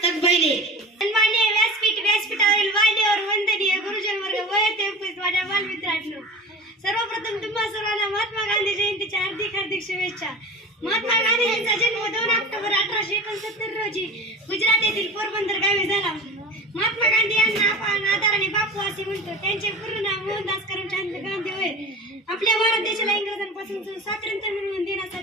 बैले. सन्माननीय व्यासपीठावरील मान्यवर वंदनीय गुरुजन वर्ग व येथे उपस्थित माझ्या बालमित्रांनो, सर्वप्रथम तुम्हा सर्वांना महात्मा गांधी जयंतीच्या हार्दिक शुभेच्छा. महात्मा गांधी यांचा जन्म 2 ऑक्टोबर 1869 रोजी गुजरात येथील पोरबंदर गावी झाला. महात्मा गांधी यांना आपण आदराने बापू असे म्हणतो. त्यांचे पूर्ण नाव मोहनदास करमचंद गांधी होय. आपल्या भारत देशाला इंग्रजांपासून स्वातंत्र्य मिळवून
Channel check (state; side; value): normal; both; correlation 0.33